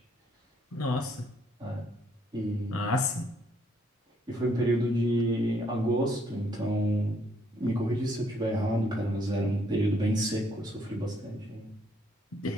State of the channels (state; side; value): normal; both; correlation 0.69